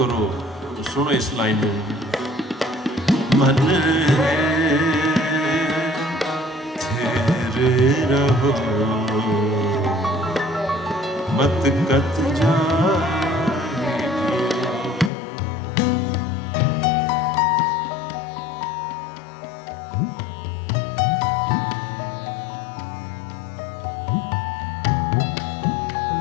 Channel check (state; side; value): drops out; right; at 15.1 s